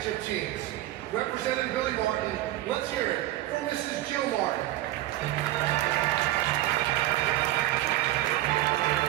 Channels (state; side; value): quieter; left; 15.7 dB